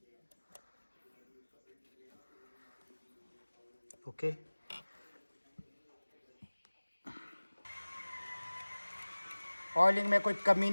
ओके। ऑयलिंग में कोई कमी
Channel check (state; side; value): inverted; both; correlation -1.00